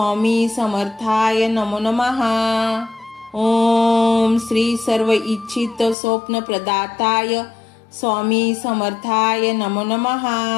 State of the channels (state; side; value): drops out; right; at 6.0 s